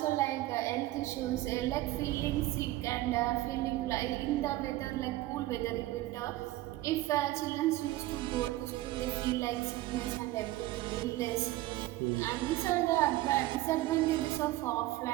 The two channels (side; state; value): left; quieter; 16.8 dB